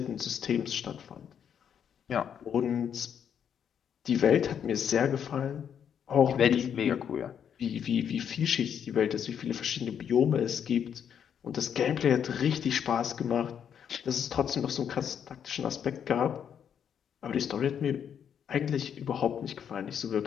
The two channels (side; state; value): right; quieter; 8.3 dB